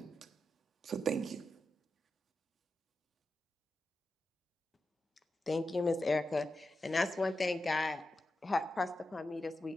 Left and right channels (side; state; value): both; normal; correlation 0.90